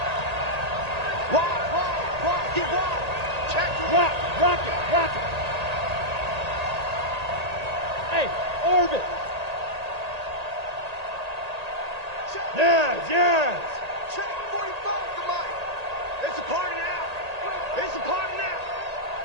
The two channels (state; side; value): late; left; 1.8 ms